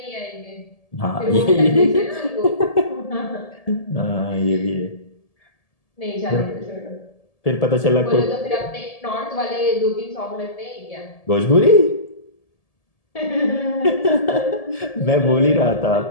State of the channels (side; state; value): right; late; 1.7 ms